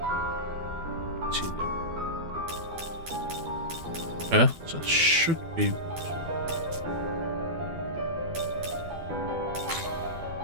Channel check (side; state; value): left; late; 12 ms